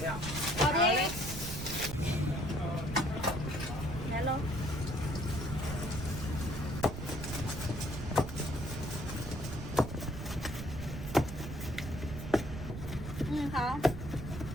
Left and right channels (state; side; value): noise; right; rumble, 8 dB below the sound